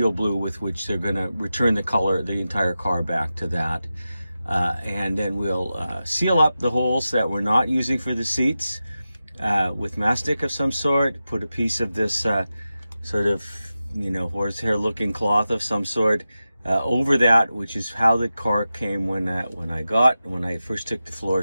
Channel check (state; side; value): inverted; both; correlation -0.93